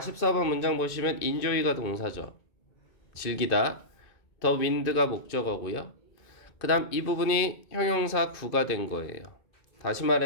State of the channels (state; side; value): late; right; 2.5 ms